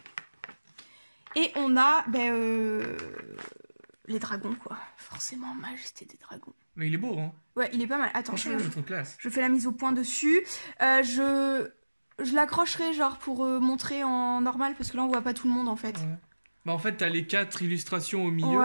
Et on a... les dragons, quoi. Forcément, Majesté des Dragons. Mais il est beau, hein. Ouais, il est pas mal. Attends, franchement, je trouve classe. Je fais la mise au point dessus. Je l'accrocherai, genre, pour montrer en normal, parce que là, on voit pas tout le monde, en fait. Ouais. Bah, en fait, t'as les 4 illustrations au milieu.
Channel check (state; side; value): inverted; both; correlation -1.00